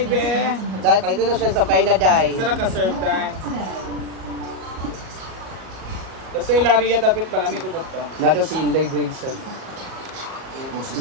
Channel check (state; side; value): late; left; 38 ms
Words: be. Dahil pala ito na siya sampay na dahil. Saan naka-serve dahil? Basta ilaria dapat malamit ito dito. Nado si Inday Bracer.